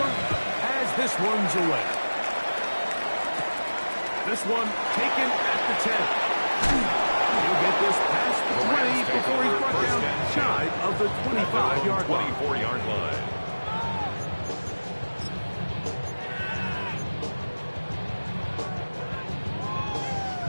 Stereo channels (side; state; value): both; inverted; correlation -1.00